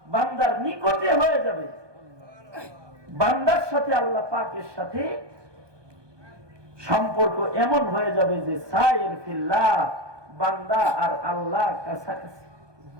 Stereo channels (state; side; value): late; left; 1.2 ms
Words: বান্দার নিকটে হয়ে যাবে, বান্দার সাথে আল্লাহ পাকের সাথে সম্পর্ক এমন হয়ে যাবে যে সায়ের ফিল্লাহ, বান্দা আর আল্লাহ কাছাকাছি।